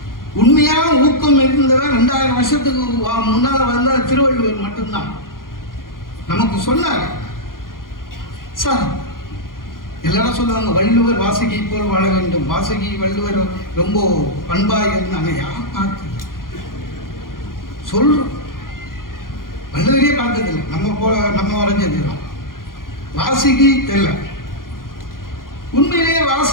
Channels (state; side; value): late; right; 0.91 ms